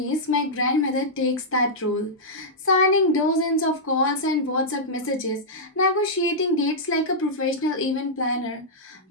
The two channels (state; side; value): normal; both; correlation -0.10